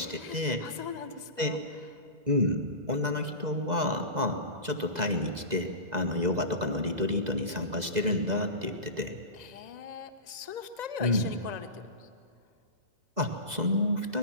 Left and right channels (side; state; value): left; late; 2.0 ms